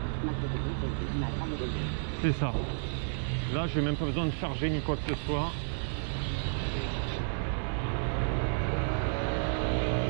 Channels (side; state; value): left; silent; digital silence